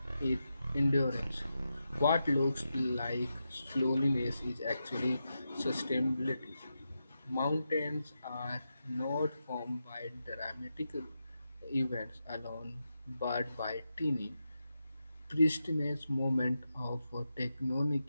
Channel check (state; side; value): inverted; both; correlation -0.88